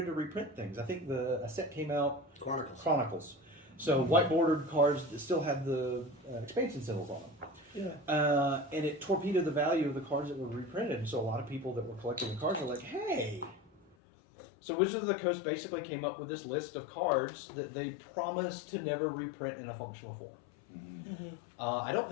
to reprint things. I think a set came out, Chronicles. So white bordered cards that still had the expansion symbols on them. Yeah. And it torpedoed the value of the cards that were reprinted. And so a lot of people that were collecting the cards were like, hey. So Wizards of the Coast basically came up with this list of cards that they promised to never reprint in a functional form. Mm-hmm. I don't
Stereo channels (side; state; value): right; drops out; at 14.0 s